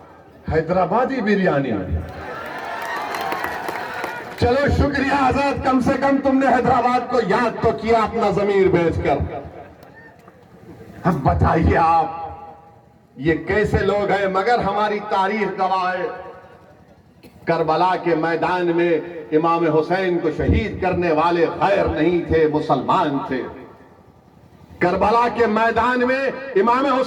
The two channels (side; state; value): both; identical; correlation 1.00